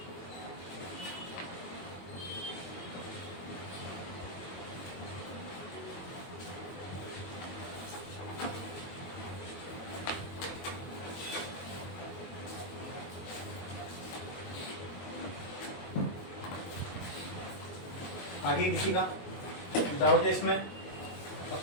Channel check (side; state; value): right; late; 22 ms